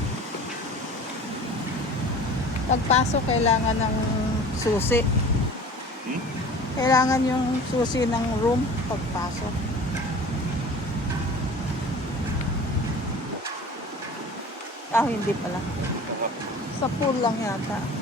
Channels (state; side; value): normal; both; correlation 0.42